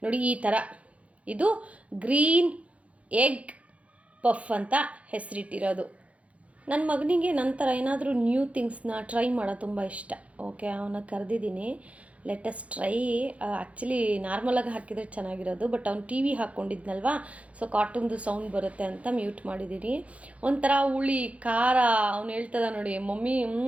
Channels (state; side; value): late; left; 0.065 ms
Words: ನೋಡಿ, ಈ ಥರ ಇದು ಗ್ರೀನ್ ಎಗ್ ಪಫ್ ಅಂತ ಹೆಸರಿಟ್ಟಿರೋದು. ನನ್ನ ಮಗನಿಗೆ ನಂತರ ಏನಾದರೂ ನ್ಯೂ ಥಿಂಗ್ಸ್ನ ಟ್ರೈ ಮಾಡೋದು ತುಂಬ ಇಷ್ಟ. ಓಕೆ, ಅವನ್ನ ಕರೆದಿದ್ದೀನಿ, ಲೆಟಸ್ ಟ್ರೈ. ಆ್ಯಕ್ಚುಲಿ ನಾರ್ಮಲಾಗಿ ಹಾಕಿದರೆ ಚೆನ್ನಾಗಿರೋದು, ಬಟ್ ಅವ್ನು ಟಿ ವಿ ಹಾಕ್ಕೊಂಡಿದ್ನಲ್ವಾ, ಸೊ ಕಾರ್ಟೂನ್ದು ಸೌಂಡ್ ಬರುತ್ತೆ ಅಂತ ಮ್ಯೂಟ್ ಮಾಡಿದ್ದೀನಿ. ಒಂಥರ ಹುಳಿ ಖಾರ, ಅವ್ನು ಹೇಳ್ತದ ನೋಡಿ ಮಮ್ಮಿ